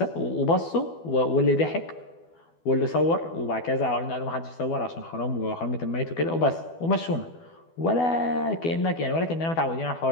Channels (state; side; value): late; right; 12 ms